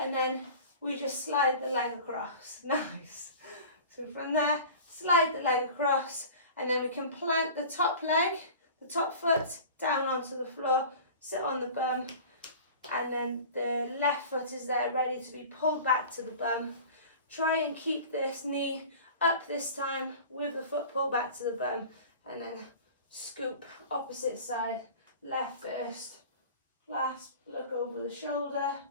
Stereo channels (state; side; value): inverted; both; correlation -0.40